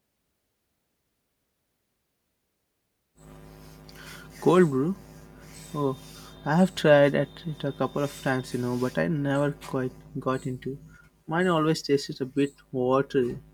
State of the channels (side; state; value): both; identical; correlation 1.00